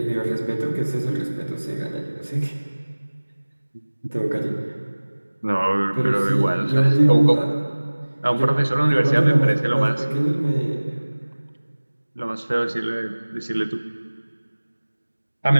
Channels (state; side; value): inverted; both; correlation -1.00